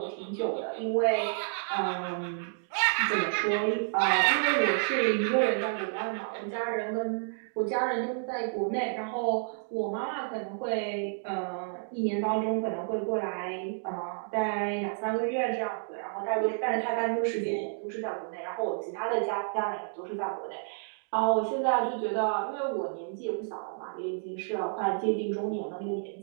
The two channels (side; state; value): left; silent; digital silence